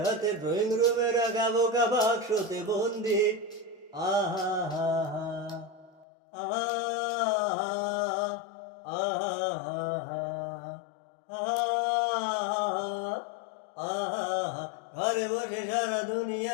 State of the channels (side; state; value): right; drops out; at 6.1 s